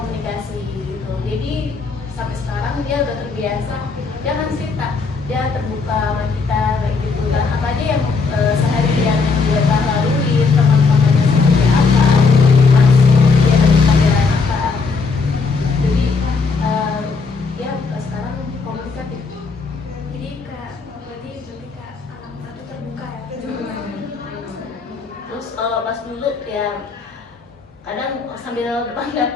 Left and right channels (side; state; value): right; quieter; 4.6 dB